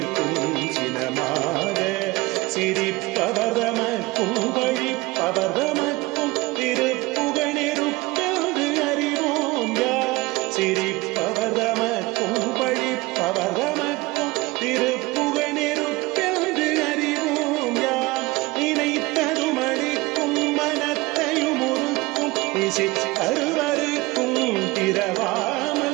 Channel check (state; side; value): quieter; left; 21.8 dB